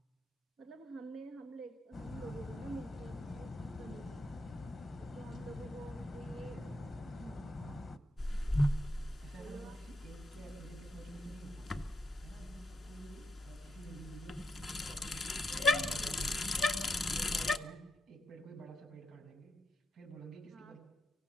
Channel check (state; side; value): normal; both; correlation 0.84